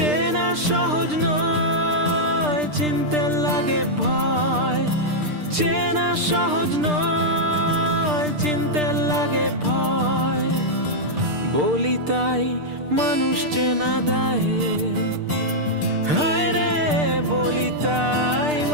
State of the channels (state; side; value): late; left; 6.7 ms